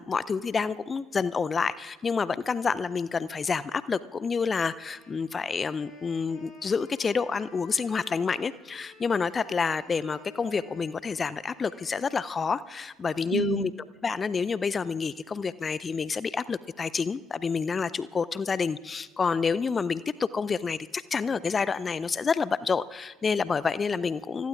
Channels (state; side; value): quieter; right; 4.8 dB